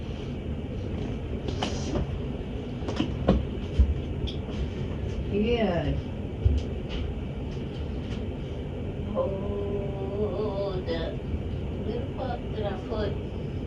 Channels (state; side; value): identical; both; correlation 1.00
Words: yeah. Hold up. Where the fuck did I put?